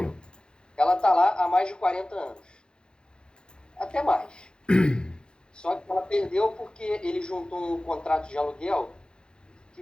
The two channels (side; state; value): right; late; 0.049 ms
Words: Ela está lá há mais de 40 anos. Até mais. Só que ela perdeu porque ele juntou um contrato de aluguel